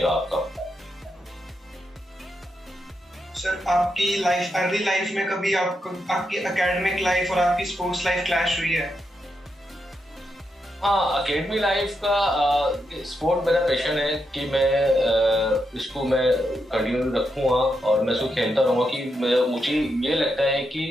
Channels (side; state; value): both; normal; correlation 0.83